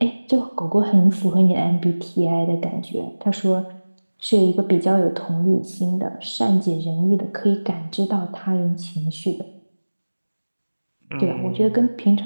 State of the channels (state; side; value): inverted; both; correlation -1.00